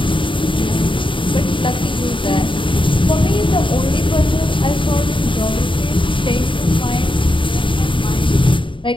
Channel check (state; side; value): late; right; 0.24 ms